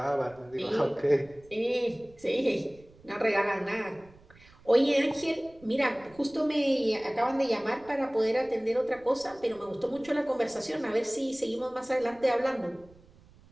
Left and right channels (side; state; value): right; noise; rumble, 26 dB below the sound